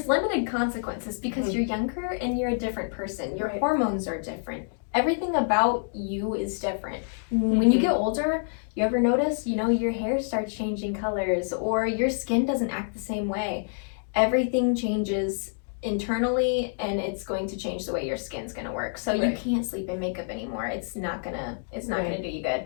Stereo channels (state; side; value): silent; right; digital silence